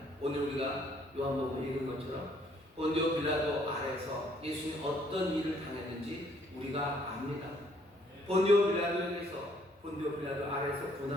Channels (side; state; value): both; normal; correlation 0.65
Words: 오늘 우리가 요한복음 읽은 것처럼 본디오 빌라도 아래서 예수님이 어떤 일을 당했는지 우리가 압니다. 본디오 빌라도 아래서